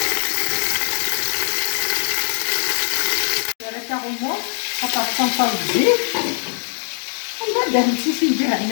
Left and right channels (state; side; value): silent; right; 56 dB below the other